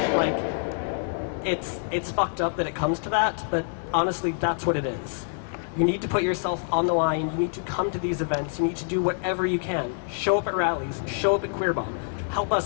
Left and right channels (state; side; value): silent; right; digital silence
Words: it's fucked up that it comes to that, but honestly, that's what it is. You need to put yourself on the line. You need to come to these events. You need to do whatever you can. Show up at rallies. Show up at QueerBomb. Help